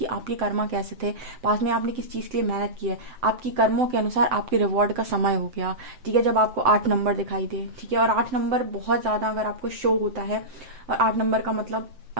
आपके कर्मा कैसे थे, पास में आपने किस चीज़ के लिए मेहनत की है, आपकी कर्मों के अनुसार आपके रिवॉर्ड का समय हो गया, ठीक है, जब आपको 8 नंबर दिखाई दे, ठीक है। और 8 नंबर बहुत ज़्यादा अगर आपको शो होता है, और 8 नंबर का मतलब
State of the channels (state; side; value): late; left; 7.8 ms